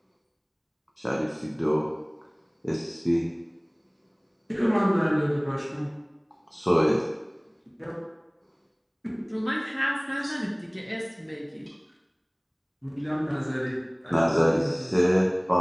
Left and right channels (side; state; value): both; identical; correlation 1.00